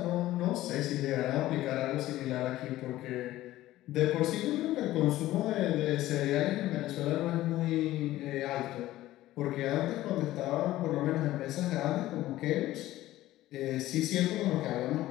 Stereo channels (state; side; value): quieter; right; 15.5 dB